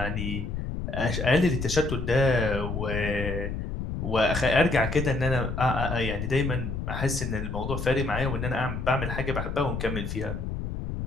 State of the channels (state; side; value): noise; left; rumble, 4 dB below the sound